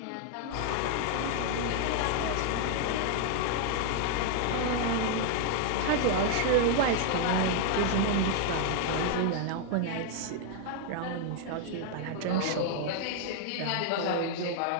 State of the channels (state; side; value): different; both; correlation 0.00